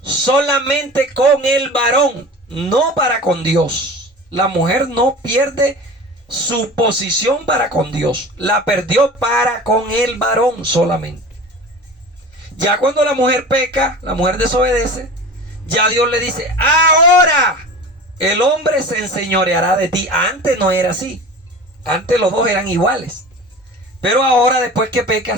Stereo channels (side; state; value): both; normal; correlation 0.36